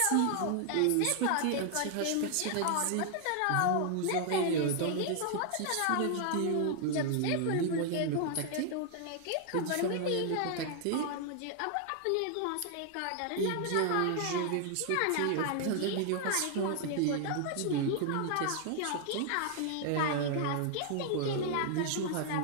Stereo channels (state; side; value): different; both; correlation 0.00